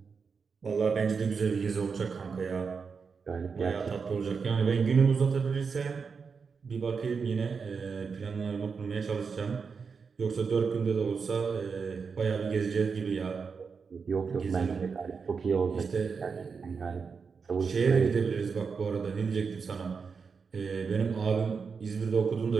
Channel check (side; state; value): left; quieter; 5.5 dB